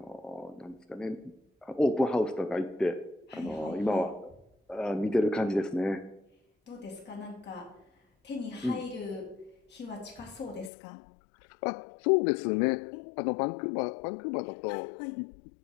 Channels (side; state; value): right; drops out; at 10.7 s